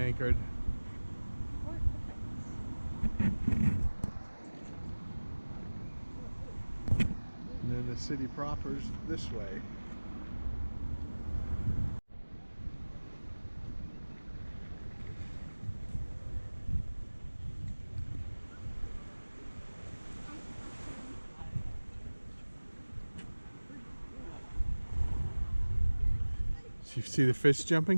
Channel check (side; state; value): both; inverted; correlation -1.00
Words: Fort de France. And then the city proper's this way. So you see the fish